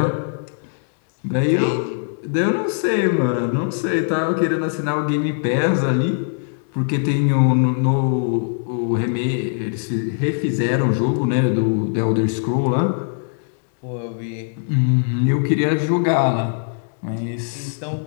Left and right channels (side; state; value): right; silent; digital silence